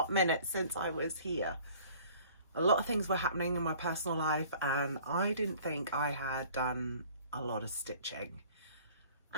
minute since I was here. A lot of things were happening in my personal life and I didn't think I had done a lot of stitching.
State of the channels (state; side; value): inverted; both; correlation -0.51